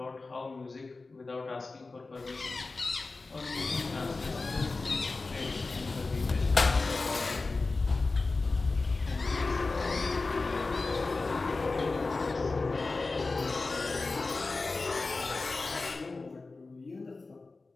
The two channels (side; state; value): right; quieter; 3.7 dB